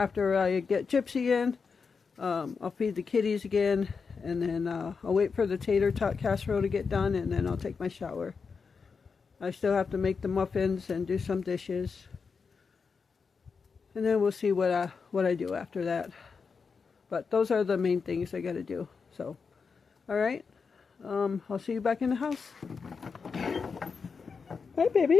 I get Gypsy in, I'll feed the kitties again, and then I'll wait for the tater tot casserole to get done, and then I'll take my shower. I still have to make the muffins and do some dishes, and then we'll see what I do after that. But those are the main things I got to do. So, all right. I'll see you back in the house. Hi,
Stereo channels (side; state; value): right; quieter; 5.3 dB